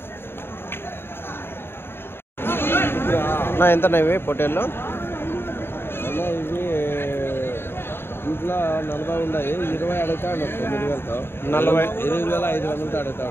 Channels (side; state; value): right; late; 0.11 ms